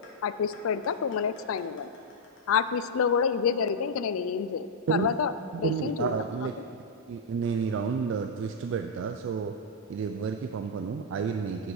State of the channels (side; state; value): both; normal; correlation -0.06